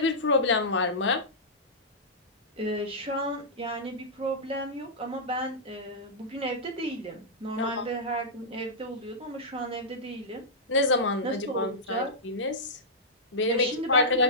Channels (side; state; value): both; normal; correlation -0.12